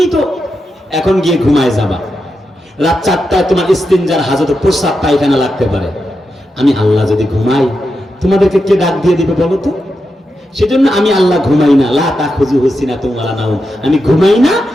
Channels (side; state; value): both; normal; correlation 0.87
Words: তো এখন গিয়ে ঘুমায় যাবা। রাত 4টায় তোমার ইস্তিনজার হাজত, প্রস্রাব পায়খানা লাগতে পারে। আমি আল্লাহ যদি ঘুমাই, তোমাদেরকে কে ডাক দিয়ে দিবে বলো তো? সেজন্য আমি আল্লাহ ঘুমাই না, লা তাখুযুহু সিনাতুন ওয়ালা নাওম, আমি ঘুমাই না,